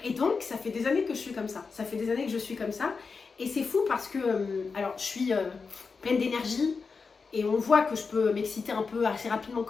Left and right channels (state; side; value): quieter; right; 4.9 dB